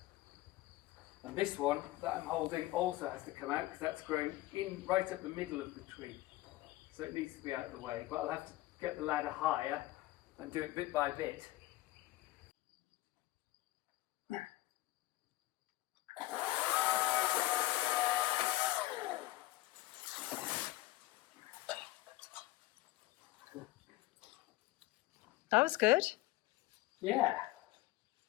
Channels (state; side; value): quieter; right; 18.0 dB